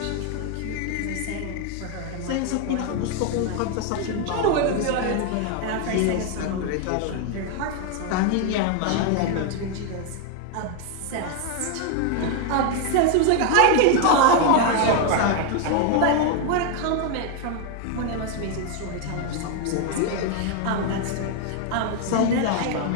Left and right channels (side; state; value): both; different; correlation 0.01